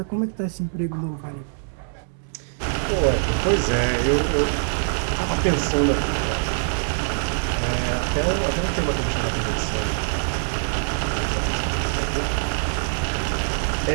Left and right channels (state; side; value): silent; left; 63 dB below the other